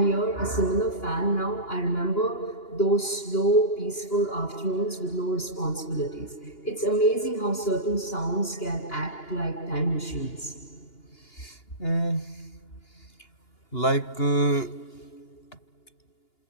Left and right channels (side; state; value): right; late; 2.9 ms